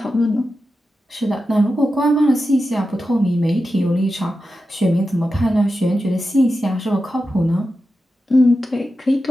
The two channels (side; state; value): both; normal; correlation 0.91